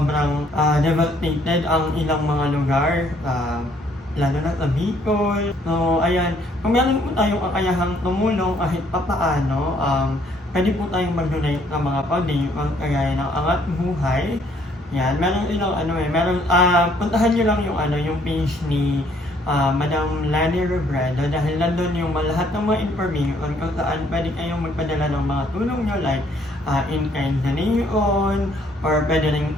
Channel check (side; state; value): both; normal; correlation 0.64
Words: devastated ang ilang mga lugar, lalo na sa Bicol. So, ayan, kung meron po tayong kakayahang tumulong kahit papaano, pwede po tayong mag-donate ng mga pag-dayuan kagaya ng Angat Buhay. Yan, meron ilang puntahan nyo lang yung page ni Madam Lani Robredo dahil nandun yung lahat ng mga information kung saan pwede kayong magpadala ng mga tulong nyo like in-kind donation or pwede rin